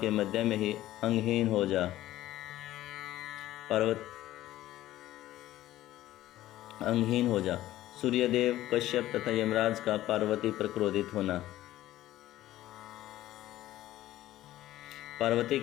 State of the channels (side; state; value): right; quieter; 14.7 dB